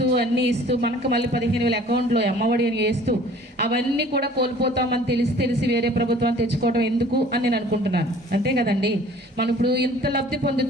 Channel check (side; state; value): both; normal; correlation 0.50